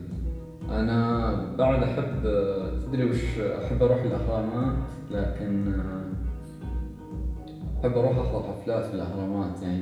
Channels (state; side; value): identical; both; correlation 1.00